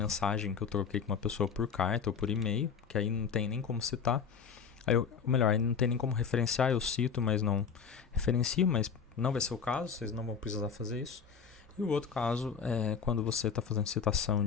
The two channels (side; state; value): right; quieter; 6.4 dB